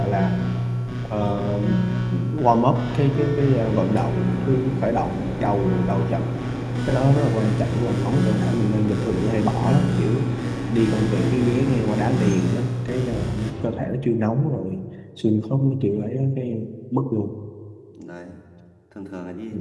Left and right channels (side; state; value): both; identical; correlation 1.00